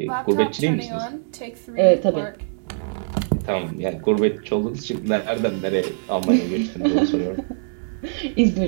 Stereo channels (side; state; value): left; silent; digital silence